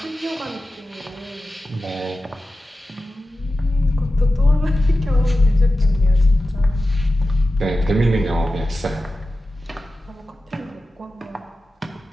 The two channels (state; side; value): normal; both; correlation 0.94